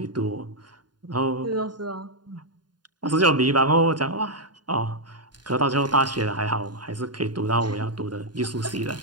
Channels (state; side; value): late; left; 0.70 ms